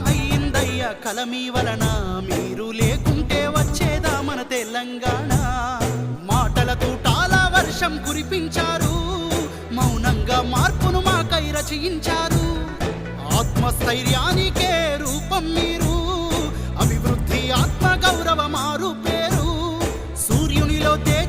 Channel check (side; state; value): both; identical; correlation 1.00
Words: అయ్యిందయ్య కలమీ వలన, మీరు లేకుంటే వచ్చేదా మన తెలంగాణ. మాటల తూటాల వర్షం కురిపించారు, మౌనంగా మార్పును మాకై రచయించారు. ఆత్మస్థైర్యానికే రూపం మీరు, అభివృద్ధి ఆత్మ గౌరవ మారు పేరు. సూర్యునిలో